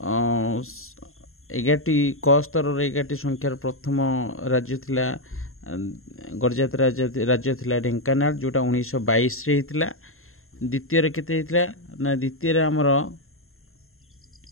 11टी क स्तर 11टी संख्यार प्रथम राज्य थिला गडजात राज्य थिला ढेंकानाळ, जोटा 1922 रे हितला। द्वितीय रे केते हितला ना द्वितीय रे हमर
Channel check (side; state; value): right; late; 0.62 ms